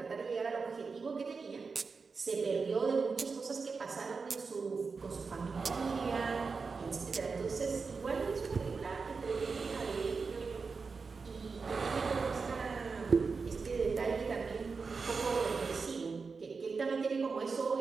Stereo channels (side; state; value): left; quieter; 4.8 dB